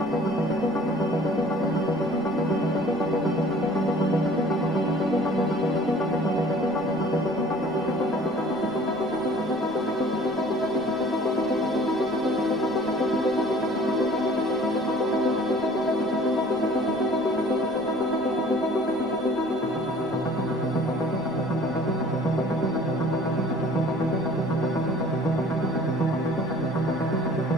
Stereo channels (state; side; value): noise; right; rumble, 24 dB below the sound